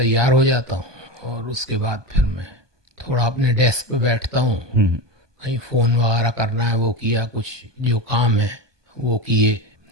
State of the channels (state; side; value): late; left; 1.2 ms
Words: हो जाता हूँ, और उसके बाद फिर मैं थोड़ा अपने डेस्क पे बैठता हूँ। कहीं फ़ोन वगैरह करना है वो किया, कुछ जो काम है वो किए,